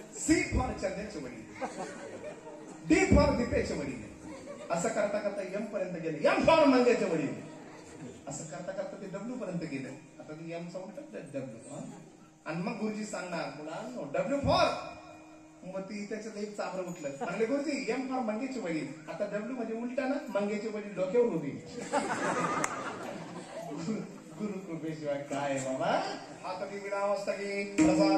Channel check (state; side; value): identical; both; correlation 1.00